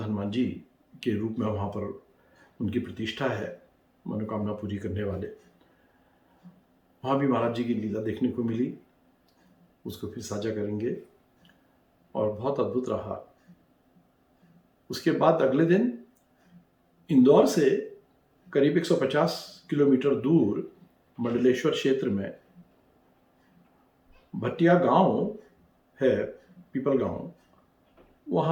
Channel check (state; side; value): identical; both; correlation 1.00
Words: जी के रूप में वहां पर उनकी प्रतिष्ठा है, मनोकामना पूरी करने वाले। वहाँ भी महाराज जी की लीला देखने को मिली, उसको फिर साझा करेंगे। और बहुत अद्भुत रहा। उसके बाद अगले दिन इंदौर से करीब 150 किलोमीटर दूर मंडलेश्वर क्षेत्र में भटिया गांव है, पीपल गांव,